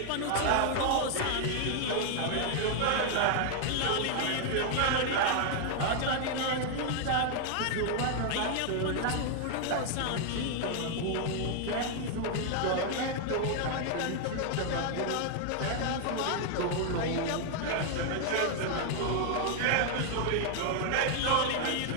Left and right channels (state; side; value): different; both; correlation 0.00